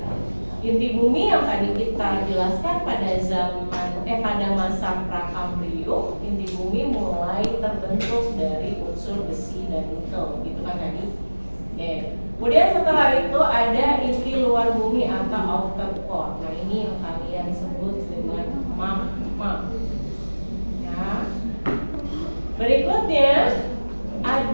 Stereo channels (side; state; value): both; inverted; correlation -1.00